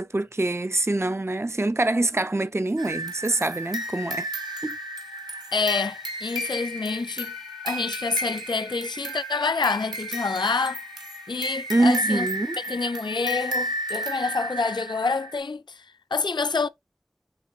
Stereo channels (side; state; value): both; normal; correlation 0.56